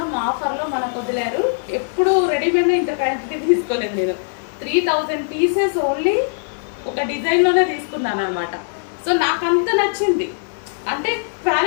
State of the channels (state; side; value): silent; right; 61 dB below the other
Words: ఆఫర్లో మనకు వదిలేరు. ఎప్పుడు రెడీమేడ్లో ఇంత క్వాంటిటీ తీసుకోలేదు నేను. 3000 పీసెస్ ఓన్లీ ఒక డిజైన్లోనే తీసుకున్నాను అనమాట. సో నాకు అంత నచ్చింది. అంటే